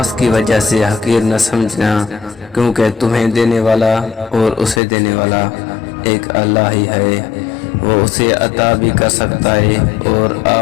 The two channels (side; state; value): right; drops out; at 4.8 s